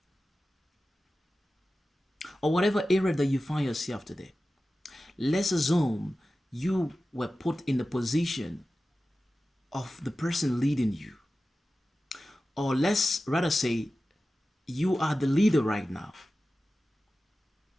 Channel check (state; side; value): normal; both; correlation 0.95